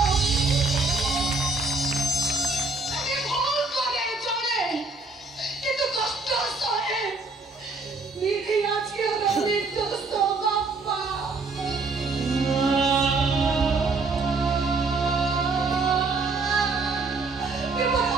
কিন্তু কষ্ট সহে নিধি আজকে নির্দোষ বাপ্পা এবার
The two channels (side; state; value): left; quieter; 3.7 dB